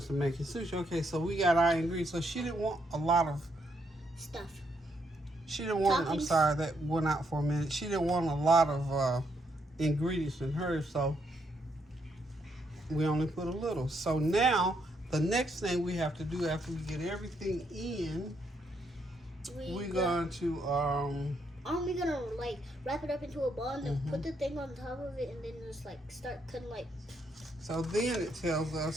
to making sushi. Okay, so we got our ingredients. So she didn't want a lot of stuff. She didn't want. I'm sorry, that went out for a minute. She didn't want a lot of ingredients in hers, so we only put a little. So now the next thing we have to do after we get everything in, we're going to aren't we gonna like wrap it up into a ball and then put the thing on top of it and then just like start cutting like. So then it tells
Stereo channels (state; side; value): normal; both; correlation 0.76